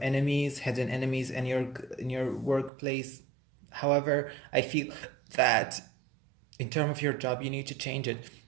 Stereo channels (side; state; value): left; drops out; at 2.7 s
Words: enemies, hidden enemies in your workplace. However, I feel that in terms of your job, you need to change it.